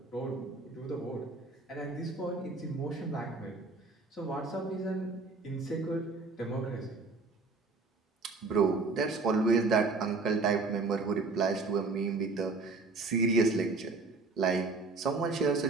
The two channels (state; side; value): quieter; left; 3.8 dB